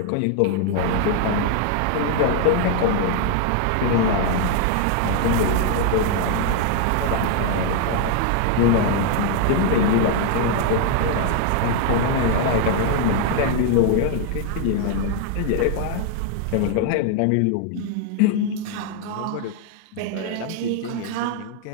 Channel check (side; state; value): both; different; correlation 0.00